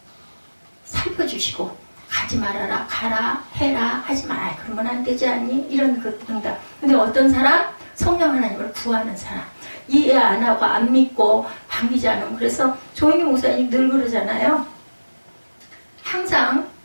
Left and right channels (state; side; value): inverted; both; correlation -1.00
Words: 살펴주시고 가지 말아라, 가라, 해라, 하지 마라. 그러면 안 되지 않니? 이런 응답. 근데 어떤 사람? 성령 하나님을 구하는 사람. 이해 안 하고 안 믿고 반기지 않으면. 그래서 조영희 목사님 늘 그러잖아요. 항상